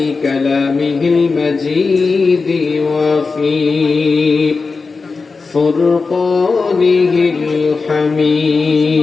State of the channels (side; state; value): right; quieter; 4.4 dB